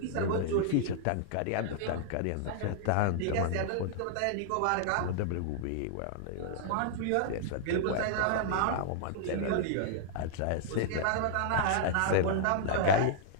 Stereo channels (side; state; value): both; different; correlation -0.01